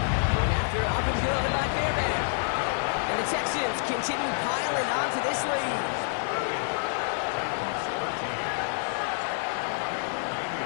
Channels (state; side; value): silent; right; 59 dB below the other